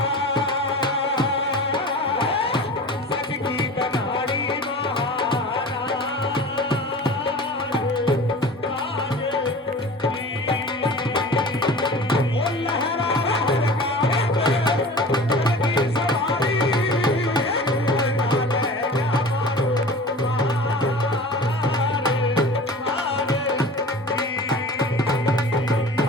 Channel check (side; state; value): both; normal; correlation 0.39